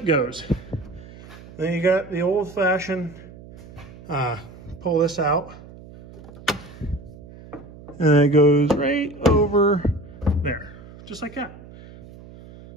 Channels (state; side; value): noise; right; hum, 18 dB below the sound